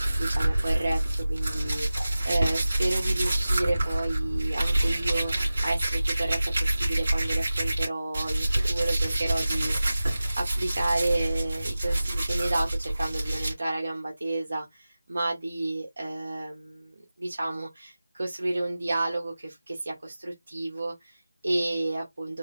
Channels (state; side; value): inverted; both; correlation -0.95